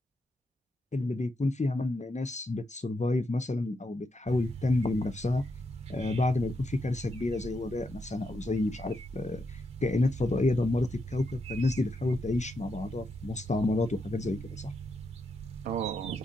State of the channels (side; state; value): both; normal; correlation 0.82